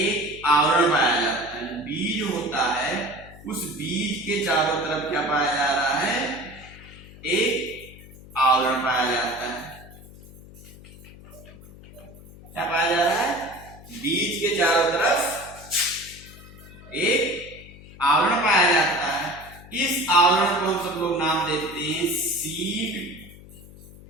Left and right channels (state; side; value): noise; left; hum, 19 dB below the sound